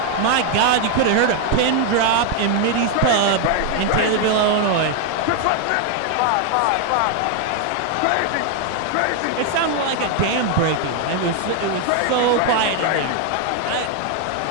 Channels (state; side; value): different; both; correlation 0.01